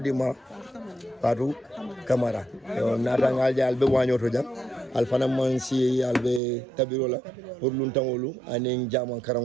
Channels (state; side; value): drops out; left; at 6.4 s